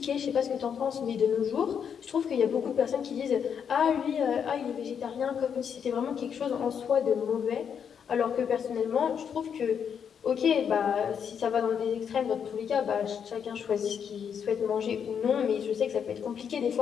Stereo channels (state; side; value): quieter; right; 7.5 dB